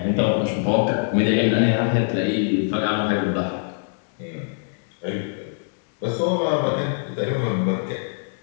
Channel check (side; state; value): right; silent; digital silence